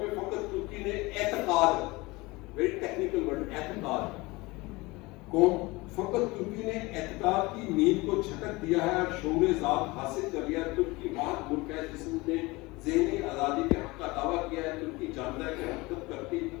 میں فقط ترکی نے اعتقاد، ویری ٹیکنیکل ورڈ، اعتقاد قوم، فقط ترکی نے اعتقاد کی نیند کو جھٹک دیا ہے اور شعور ذات حاصل کر لیا. ترکی واحد ملک ہے جس نے ذہنی آزادی کے حق کا دعویٰ کیا ہے. ترکی جانتا ہے کہ حرکت کرتی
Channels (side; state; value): right; quieter; 22.8 dB